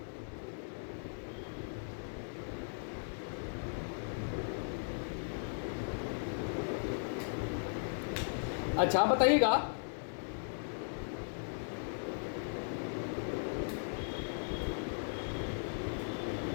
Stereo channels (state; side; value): silent; right; digital silence